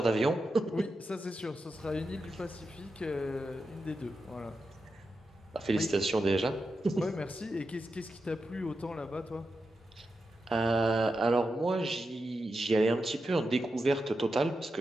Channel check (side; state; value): both; normal; correlation 0.88